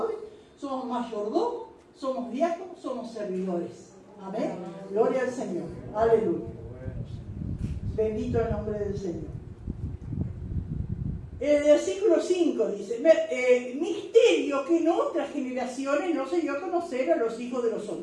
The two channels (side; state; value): both; identical; correlation 1.00